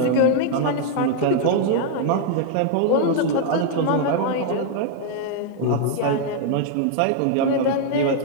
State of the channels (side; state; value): both; different; correlation 0.00